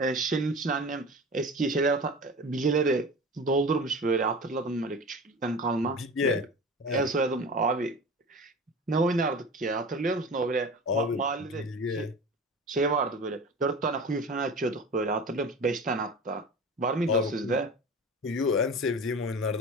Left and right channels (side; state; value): both; normal; correlation 0.34